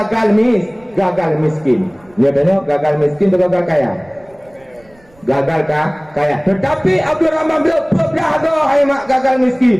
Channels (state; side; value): noise; right; rumble, 30 dB below the sound